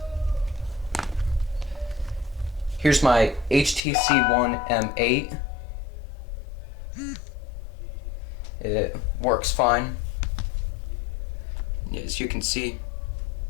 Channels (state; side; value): drops out; right; at 3.9 s